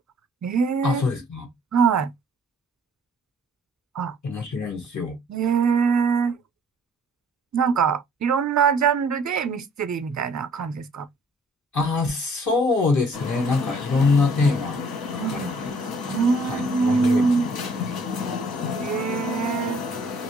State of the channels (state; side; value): normal; both; correlation 0.58